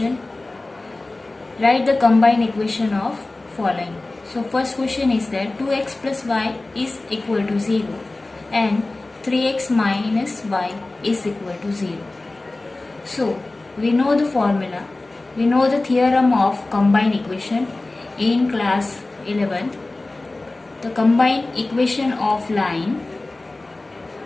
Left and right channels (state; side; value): quieter; right; 3.0 dB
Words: write the combined equation of following. So first question is that 2x plus y is equal to 0 and 3x minus y is equal to 0. So we know the formula. We know the theorem of combined equation in class 11. The combined equation of line